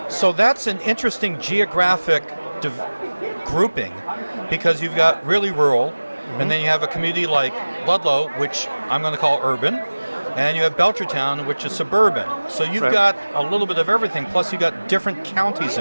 So that's an interesting geographic grouping because you've got really rural, and then you have a community like Ludlow, which I'm going to call urban, and you have Belchertown, which is suburban. So you've got a little bit of everything, plus you've got different counties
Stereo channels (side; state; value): both; inverted; correlation -1.00